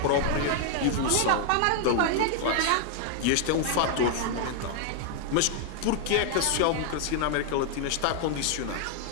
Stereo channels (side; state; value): both; different; correlation 0.00